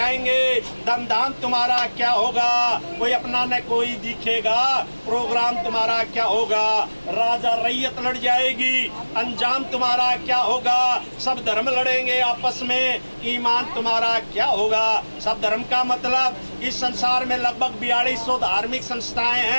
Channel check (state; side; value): inverted; both; correlation -1.00